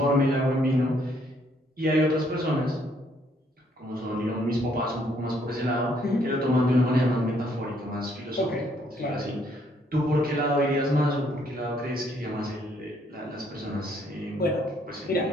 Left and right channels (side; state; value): both; normal; correlation 0.68